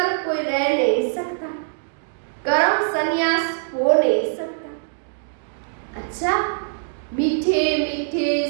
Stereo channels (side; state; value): left; silent; digital silence